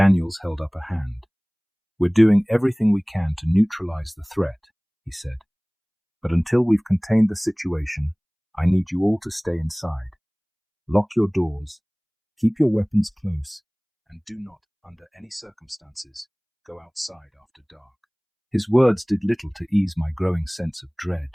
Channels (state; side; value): identical; both; correlation 1.00